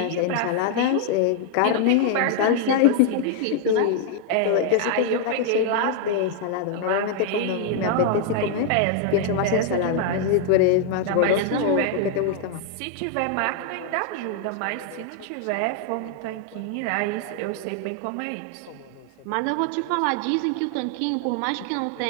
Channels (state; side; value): different; both; correlation 0.00